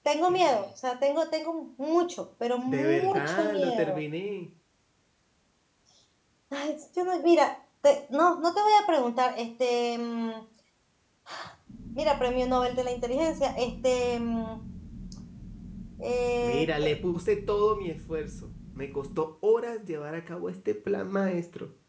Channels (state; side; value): identical; both; correlation 1.00